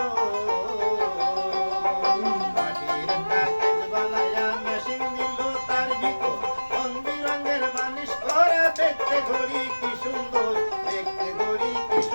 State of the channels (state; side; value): inverted; both; correlation -1.00